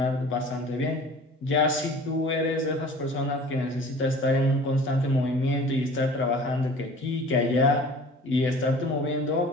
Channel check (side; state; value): both; normal; correlation 0.45